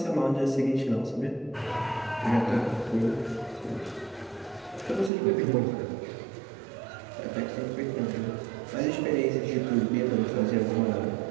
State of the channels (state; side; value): drops out; left; at 5.1 s